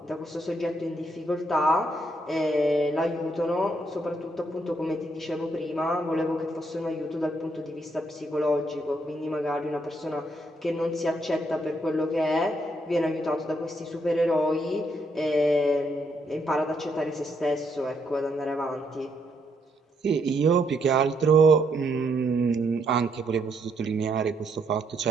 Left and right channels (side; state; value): both; normal; correlation 0.75